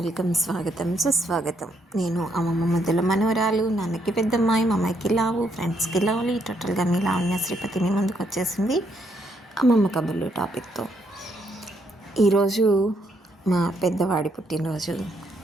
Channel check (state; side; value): normal; both; correlation 0.74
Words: స్వాగతం సుస్వాగతం. నేను అమ్మమ్మ ముద్దుల మనవరాలు, నాన్నకి పెద్దమ్మాయి, మా అమ్మాయికి లావు, ఫ్రెండ్స్కి లవ్లీ, టోటల్గా మీ లావణ్య శ్రీపతి మీ ముందుకు వచ్చేసింది అమ్మమ్మ కబుర్లు టాపిక్తో. ఈరోజు మా పెద్దవాడి పుట్టినరోజు.